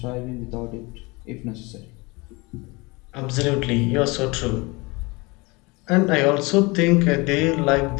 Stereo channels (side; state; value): right; quieter; 25.6 dB